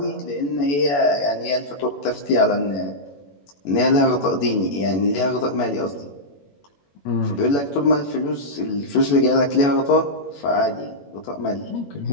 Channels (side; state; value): right; late; 21 ms